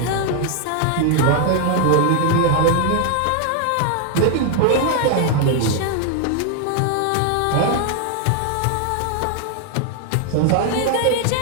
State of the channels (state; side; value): different; both; correlation 0.00